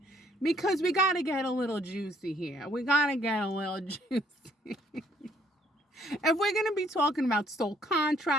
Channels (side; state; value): both; normal; correlation 0.65